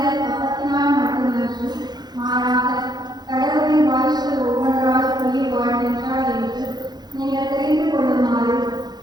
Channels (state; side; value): late; left; 0.20 ms